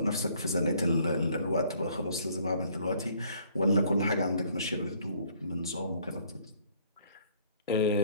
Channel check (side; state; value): both; inverted; correlation -0.60